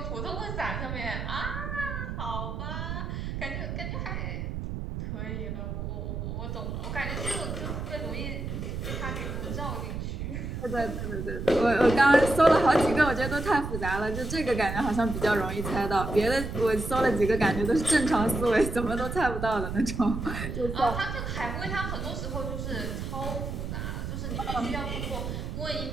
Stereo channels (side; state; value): right; noise; rumble, 5 dB below the sound